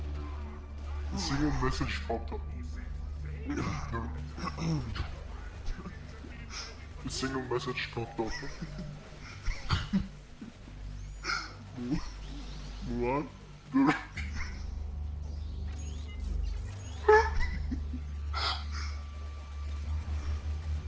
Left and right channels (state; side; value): identical; both; correlation 1.00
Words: A single message popped up. A single message popped up. What?